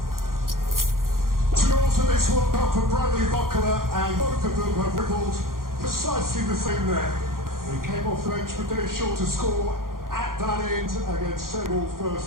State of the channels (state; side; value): late; left; 0.91 ms